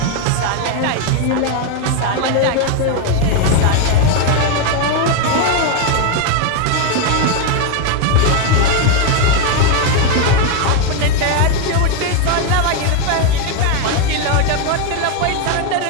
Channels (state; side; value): different; both; correlation 0.01